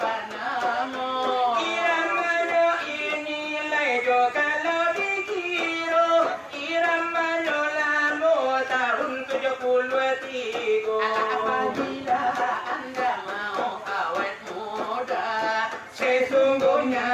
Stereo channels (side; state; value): both; identical; correlation 1.00